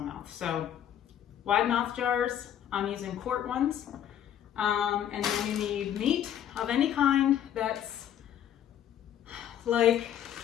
mouth. So wide mouth jars, I'm using quart ones. And then you need meat of any kind that's like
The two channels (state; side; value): quieter; right; 10.3 dB